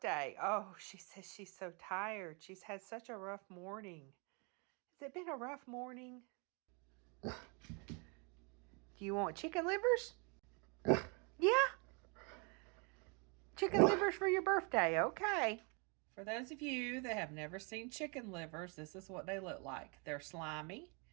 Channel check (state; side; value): quieter; left; 33.6 dB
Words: Oh, she says she's so tired. She's had such a rough morning. Has it been a rough morning? Do you want chicken livers? Yeah? Chicken livers for your birthday. Okay. For those of you that have never seen chicken livers, this is what they look like. They're slimy,